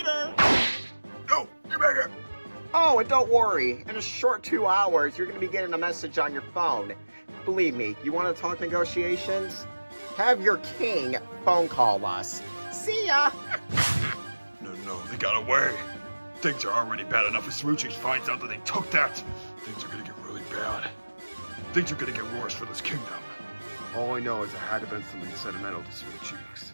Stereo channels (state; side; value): inverted; both; correlation -1.00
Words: No, get back here! Oh, and don't worry. In a short 2 hours, you're going to be getting a message on your phone. Believe me, you want to talk negotiations? Have your king phone call us. See ya! No, they got away. Things are already bad enough if Smoothcheeks finds out that they took that. Things are gonna get really bad. Things are gonna get worse for this kingdom. All I know is it had to have been something sentimental to Smoothcheeks.